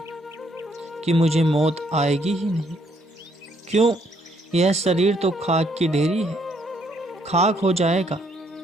कि मुझे मौत आएगी ही नहीं। क्यों? यह शरीर तो खाक की ढेरी है, खाक हो जाएगा।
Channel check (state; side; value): normal; both; correlation 0.69